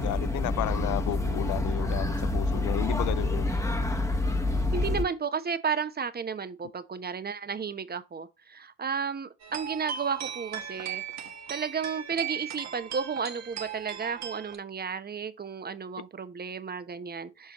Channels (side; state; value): both; normal; correlation 0.38